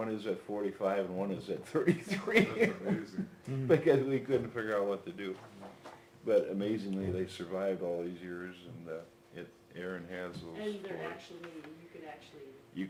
is at 45, and one is at 33. Amazing. Because we couldn't figure out what to do. But amazingly, they survived all these years, and Aaron has those. And they're stories. actually, you could actually, You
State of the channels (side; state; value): both; identical; correlation 1.00